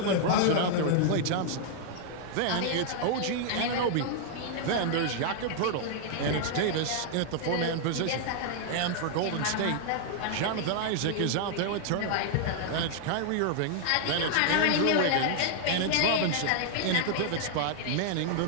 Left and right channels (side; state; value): both; different; correlation -0.01